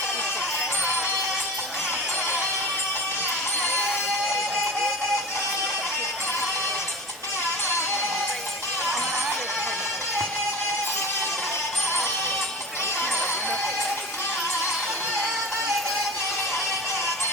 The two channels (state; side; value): normal; both; correlation 0.33